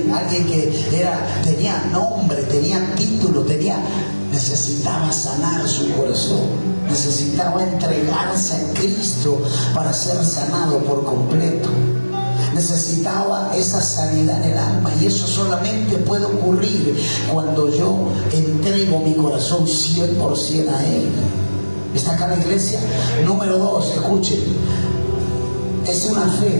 que tenía nombre, tenía título, necesitaba sanar su corazón, necesitaba entregarse a Cristo para ser sanado por completo. Necesitaba esa sanidad en el alma, y eso solamente puede ocurrir cuando yo entrego mi corazón 100% a Él. ¿Está acá la iglesia? Número 2, escuchen, es una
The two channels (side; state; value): both; inverted; correlation -1.00